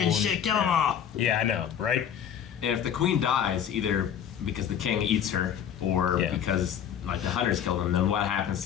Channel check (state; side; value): quieter; right; 9.0 dB